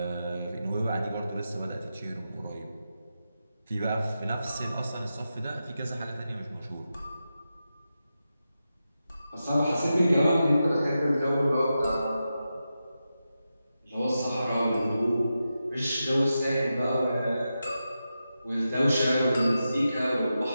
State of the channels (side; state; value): both; inverted; correlation -0.90